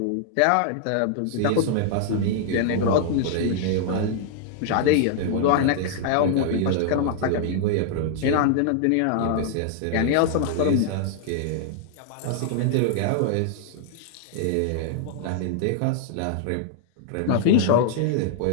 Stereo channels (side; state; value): both; different; correlation -0.01